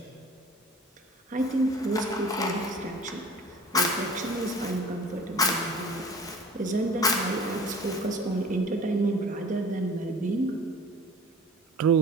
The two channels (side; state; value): both; normal; correlation 0.43